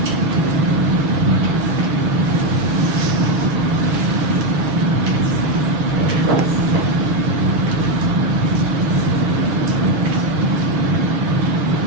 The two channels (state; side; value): late; left; 7.4 ms